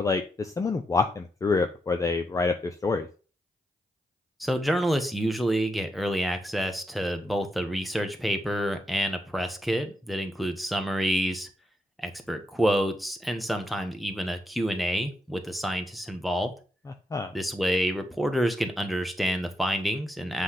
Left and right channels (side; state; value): both; normal; correlation 0.83